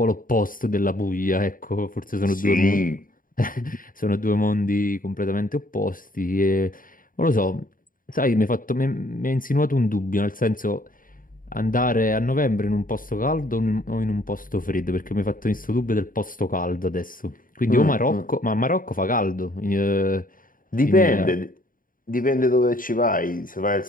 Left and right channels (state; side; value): late; right; 0.40 ms